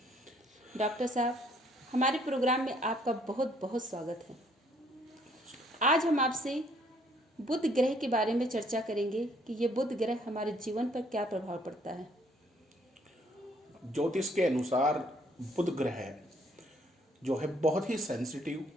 डॉक्टर साहब, हमारे प्रोग्राम में आपका बहुत बहुत स्वागत है। आज हम आपसे बुध ग्रह के बारे में चर्चा करेंगे कि ये बुध ग्रह हमारे जीवन पर क्या प्रभाव पड़ता है। ज्योतिष के अनुसार बुध ग्रह जो है बहुत ही सेंसिटिव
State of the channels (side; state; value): both; normal; correlation 0.64